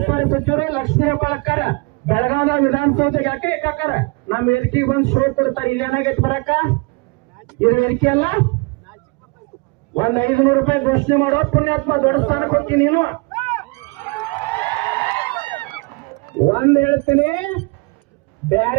ಸಚಿವರು ಲಕ್ಷ್ಮೀ ಹೆಬ್ಬಾಳ್ಕರ್ ಬೆಳಗಾವಿ ವಿಧಾನಸೌಧಕ್ಕೆ ಯಾಕೆ ಹಾಕಾರ ನಮ್ಮ ವೇದಿಕೆಗೆ ಬಂದು ಶೋ ಕೊಡ್ತಾರೆ. ಇಲ್ಲಿ ಏನಾಗೈತಿ ಬರಕ? ಇದು ವೇದಿಕೆ ಅಲ್ಲ. ಒಂದ್ 500 ರೂಪಾಯಿ ಘೋಷಣೆ ಮಾಡೋ ಪುಣ್ಯಾತ್ಮ, ದೊಡ್ಡ ಸ್ಥಾನ ಕೊಡ್ತೀನಿ ನೀನು. ಒಂದ್ ಹೇಳ್ತೀನಿ,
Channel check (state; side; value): quieter; left; 28.7 dB